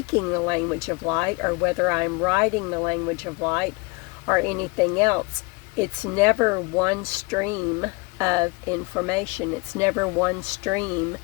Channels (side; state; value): right; quieter; 27.1 dB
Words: the language of light, or whether I'm writing the language of light or anything else. It's never one stream of information. It's never one stream